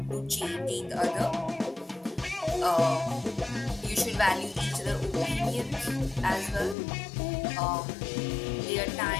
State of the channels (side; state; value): right; drops out; at 6.8 s